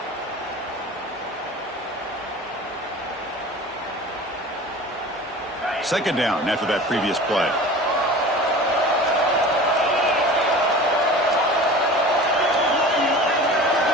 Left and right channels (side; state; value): both; normal; correlation 0.38